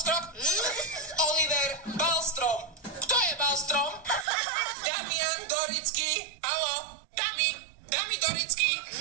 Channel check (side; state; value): left; drops out; at 4.2 s